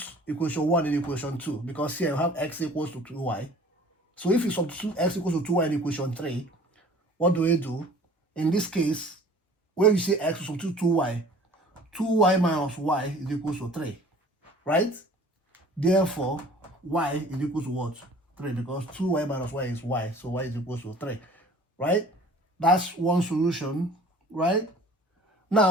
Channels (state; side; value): normal; both; correlation 0.48